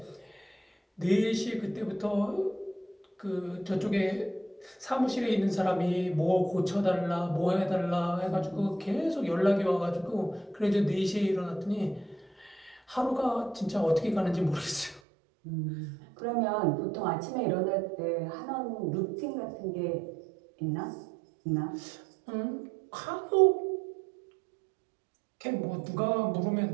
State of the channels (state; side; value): drops out; left; at 15.0 s